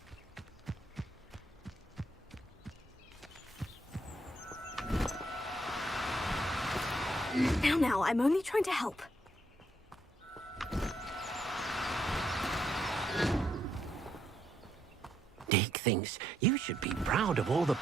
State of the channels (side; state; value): both; normal; correlation 0.75